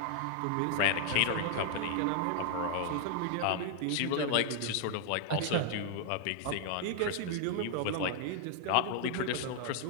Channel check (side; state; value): both; different; correlation 0.00